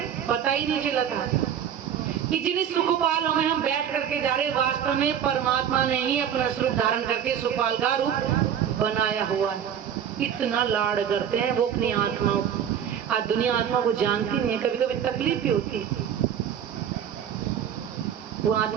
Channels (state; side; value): quieter; left; 8.9 dB